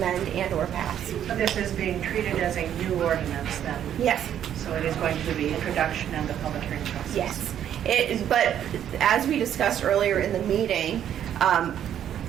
and or pass. So this is being treated as a new ordinance then? Yes. So it is going to be introduction and the public hearing process? Yes. But as we discussed earlier in the meeting,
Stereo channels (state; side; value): quieter; left; 10.1 dB